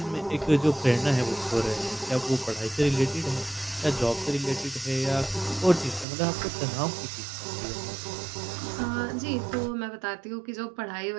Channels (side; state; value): left; drops out; at 6.1 s